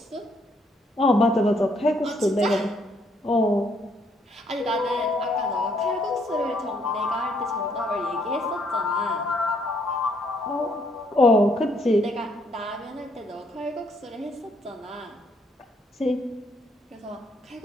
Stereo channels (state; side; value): normal; both; correlation 0.70